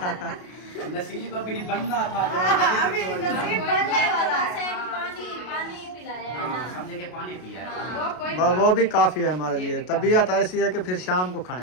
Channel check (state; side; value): late; right; 33 ms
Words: नसीब अभी बनना था, अभी नसीब बनने वाला है। पानी पिलाया है हाँ, ना। समझे कि पानी पिया है। वो कोई वो भी काफी है हमारे लिए। तबीयत ऐसी है कि फिर शाम को